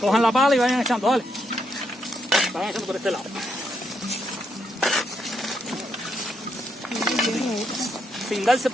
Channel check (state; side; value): normal; both; correlation 0.78